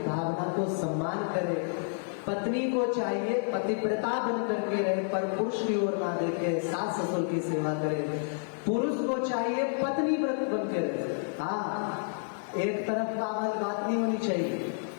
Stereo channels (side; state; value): right; silent; 58 dB below the other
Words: भावना को सम्मान करे। पत्नी को चाहिए पतिव्रता बन करके रहे, पर पुरुष की ओर ना देखे, सास ससुर की सेवा करे। पुरुष को चाहिए पत्नी व्रत बन के रहे। हाँ, एक तरफ बात नहीं होनी चाहिए।